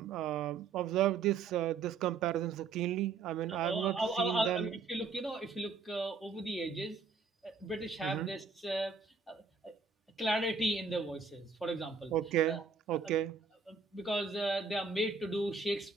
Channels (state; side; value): quieter; left; 4.9 dB